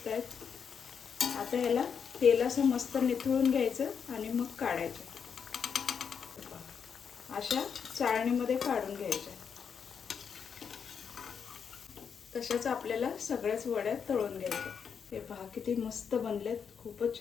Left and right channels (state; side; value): quieter; right; 6.8 dB